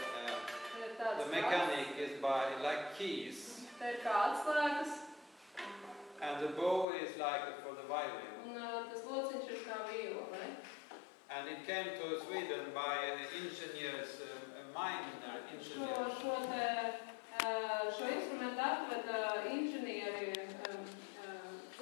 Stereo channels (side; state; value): right; drops out; at 6.9 s